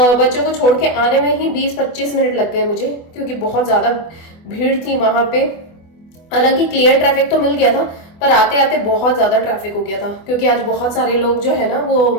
बच्चों को छोड़ के आने में ही 20-25 मिनट लग गए मुझे, क्योंकि बहुत ज्यादा भीड़ थी वहां पे। हालांकि क्लियर ट्रैफिक तो मिल गया था, पर आते आते बहुत ज्यादा ट्रैफिक हो गया था, क्योंकि आज बहुत सारे लोग जो है ना वो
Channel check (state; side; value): late; right; 24 ms